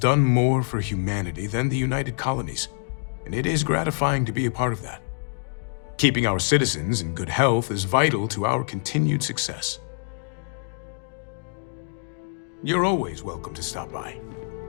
more for humanity than the United Colonies, and it is gratifying to be a part of that. Keeping our citizens in good health is vital to our continued success. You're always welcome to stop by.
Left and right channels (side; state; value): right; silent; digital silence